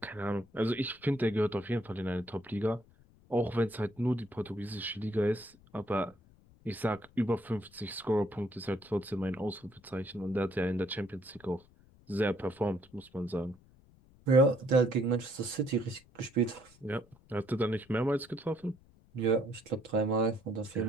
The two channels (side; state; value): left; noise; rumble, 27 dB below the sound